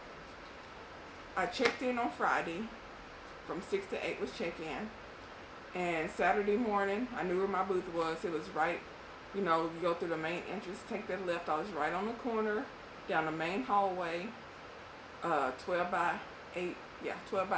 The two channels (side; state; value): both; identical; correlation 1.00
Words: I checked in on Friday. From 6 to 8 was check-in. And Saturday morning, I knew where my booth was. It was right, you know, you go through the main entrance, take that left. I was right on the corner, down the main hallway, 12 by 8